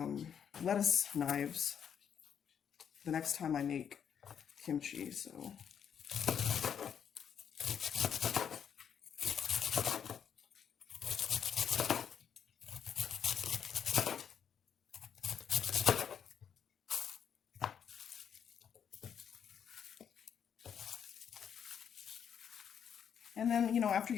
lettuce knives the next time I make kimchi. So and then, you know, after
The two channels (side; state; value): right; quieter; 8.1 dB